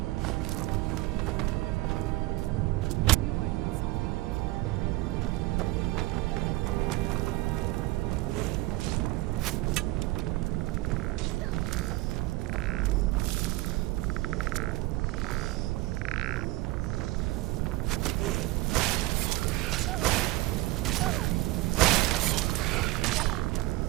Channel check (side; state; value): left; quieter; 19.2 dB